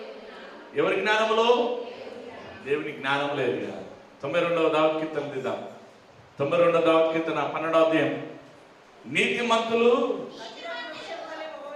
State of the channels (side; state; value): both; identical; correlation 1.00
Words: ఎవరి జ్ఞానంలో? దేవుని జ్ఞానంలో ఎదగాలి. 92వ దావీదు కీర్తన దిద్దాం. 92వ దావీదు కీర్తన 12వ అధ్యాయం. నీతిమంతులు